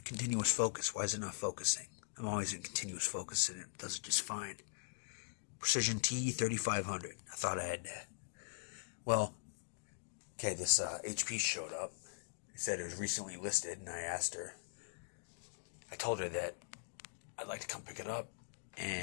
continuous focus. Why is it not focusing? I'm always in continuous focus and it does it just fine. Precision T3500. I thought I had that. Well, okay, this HP showed up. It said it was recently listed, and I told her that I'd like to come pick it up,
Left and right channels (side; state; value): right; silent; digital silence